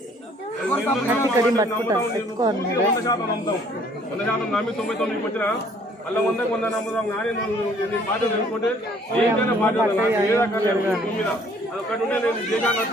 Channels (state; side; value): normal; both; correlation 0.59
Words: నమ్మి 99 వచ్చిన అలా 100 నమ్ముదాం కానీ నీ బాధ్యత తెలుసుకుంటే ఏంటైనా బాధ్యత నాకు మీద అదొక్కటి ఉంటే నేను